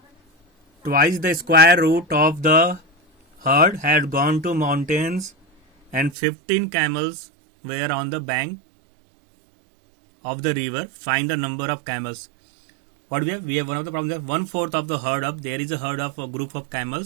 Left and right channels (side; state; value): left; drops out; at 6.1 s